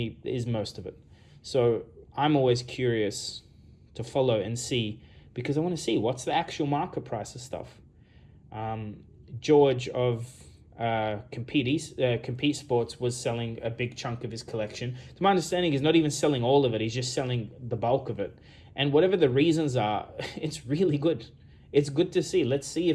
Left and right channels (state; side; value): identical; both; correlation 1.00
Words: is most of it. So I'm always curious to follow and see, because I want to see what's the actual market price of stuff. George of Compete Sports was selling a big chunk of his collection. To my understanding, he's not even selling all of it. He's just selling the bulk of it. And whatever the reasons are, it's really good. It's good to see. Let's see